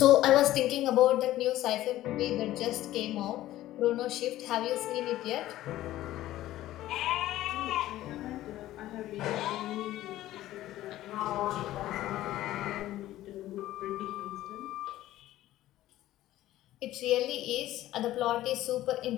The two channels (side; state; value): right; quieter; 14.7 dB